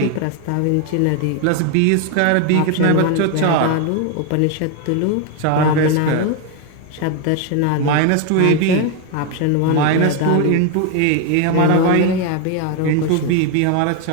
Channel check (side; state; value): both; different; correlation 0.01